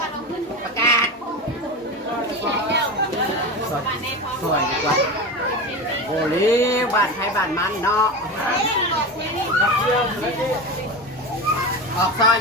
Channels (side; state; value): both; normal; correlation 0.25